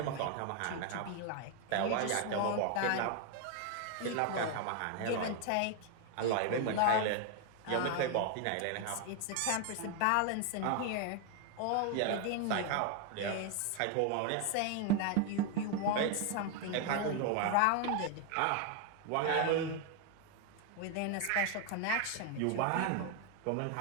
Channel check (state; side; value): different; both; correlation 0.01